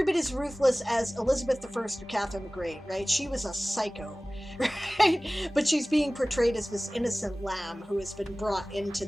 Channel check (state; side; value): normal; both; correlation 0.98